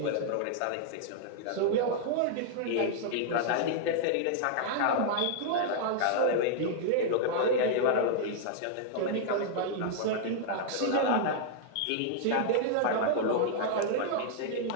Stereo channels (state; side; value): different; both; correlation -0.01